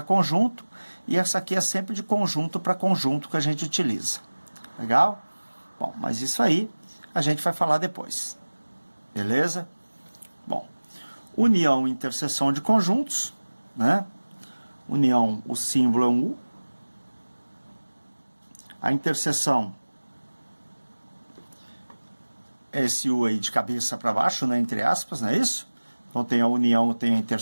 conjunto, e essa aqui é sempre de conjunto para conjunto que a gente utiliza. Legal? Bom, mas isso aí a gente vai falar depois. Beleza? Bom, união e interseção de conjuntos, né? União, o símbolo é um U. A interseção é esse U aí de cabeça para baixo, né? Entre aspas, não é isso? Então tem a união, tem a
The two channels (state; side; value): inverted; both; correlation -1.00